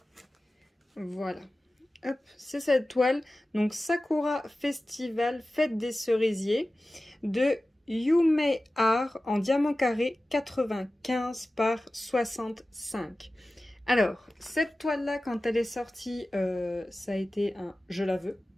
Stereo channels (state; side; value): normal; both; correlation 0.95